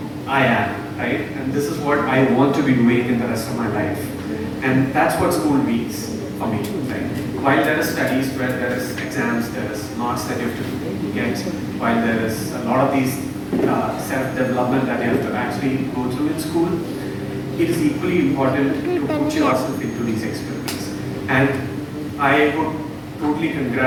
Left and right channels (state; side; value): identical; both; correlation 1.00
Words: I am, right? And this is what I want to be doing in the rest of my life. And that's what school means for me, right? While there is studies, where there is exams, there is marks that you have to get, while there is a lot of these self-development that you have to actually go through in school, it is equally important to put yourself into these experiments. And I would totally